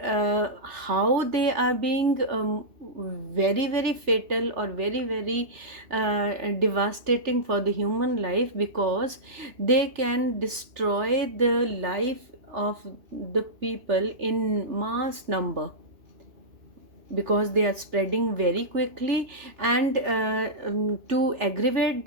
how they are being very very fatal or very very devastating for the human life, because they can destroy the life of the people in mass number, because they are spreading very quickly. And to aggravate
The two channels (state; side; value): late; left; 3.4 ms